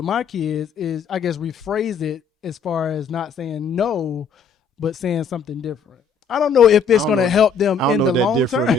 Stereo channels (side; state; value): right; quieter; 5.3 dB